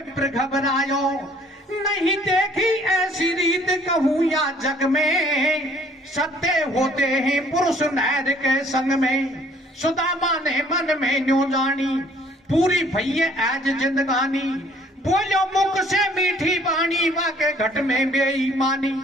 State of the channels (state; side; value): normal; both; correlation 0.59